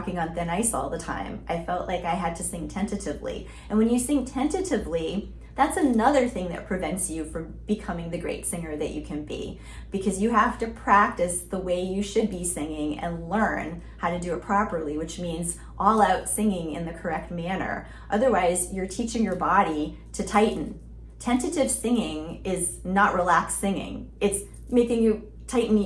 on thin ice all the time. I felt like I had to sing tentatively. And when you sing tentatively, that's another thing that prevents you from becoming the great singer that you can be, because you have to practice the way you should be singing and learn how to do it properly, which means all out singing in the correct manner. Otherwise, you're teaching your body to tighten. Tentative singing is not relaxed singing. It's making you tighten.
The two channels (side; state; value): both; identical; correlation 1.00